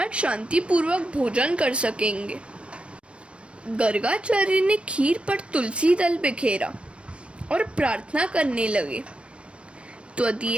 शांतिपूर्वक भोजन कर सकेंगे। गर्गाचार्य ने खीर पर तुलसी दल बिखेरा और प्रार्थना करने लगे,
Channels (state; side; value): late; left; 0.060 ms